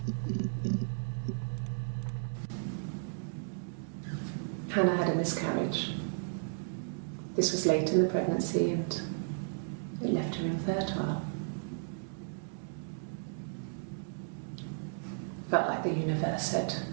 Hannah had a miscarriage. This was late in the pregnancy and it left her infertile. Felt like the universe had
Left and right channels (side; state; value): left; silent; digital silence